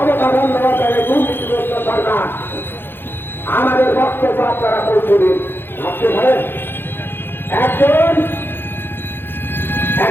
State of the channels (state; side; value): late; right; 0.10 ms